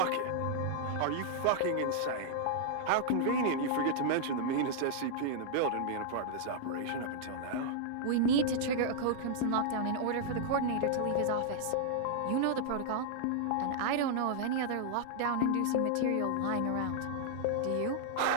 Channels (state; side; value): different; both; correlation -0.01